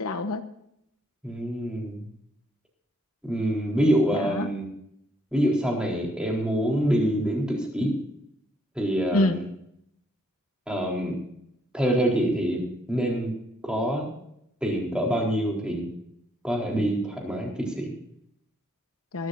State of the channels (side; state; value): both; normal; correlation 0.70